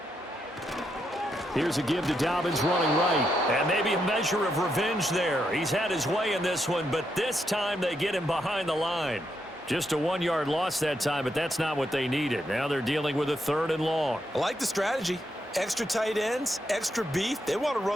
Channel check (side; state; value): both; normal; correlation 0.81